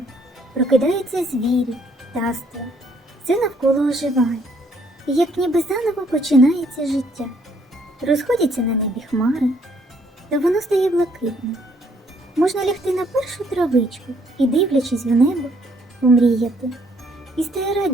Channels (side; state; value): both; normal; correlation 0.67